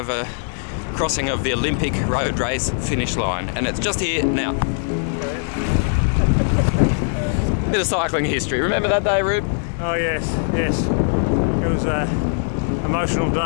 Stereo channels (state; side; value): silent; right; digital silence